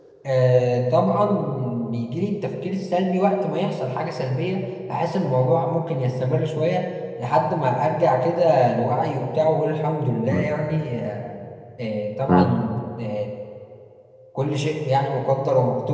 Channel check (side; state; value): both; identical; correlation 1.00